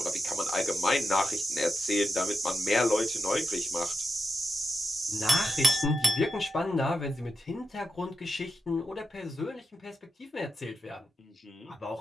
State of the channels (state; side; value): normal; both; correlation 0.87